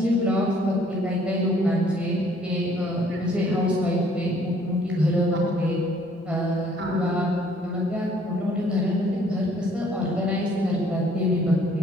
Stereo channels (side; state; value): both; normal; correlation 0.61